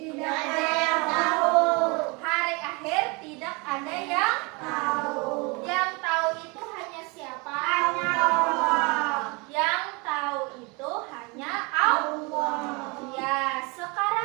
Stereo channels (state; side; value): quieter; left; 28.7 dB